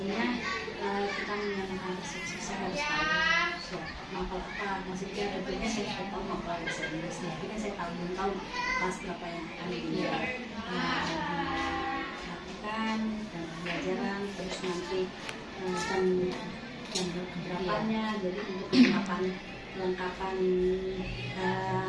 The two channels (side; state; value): both; identical; correlation 1.00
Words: kita menanyakan persepsi, saya harus tahu mapel apa, maksudnya tentunya saya sudah tahu mapel bahasa Inggris, tapi kan saya belum tahu kelas berapa yang akan dilakukan dan pembelajaran, terus nanti jam berapanya, jadi untuk kelengkapan